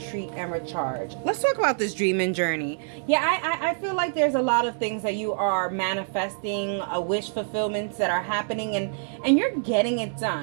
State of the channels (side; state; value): left; silent; digital silence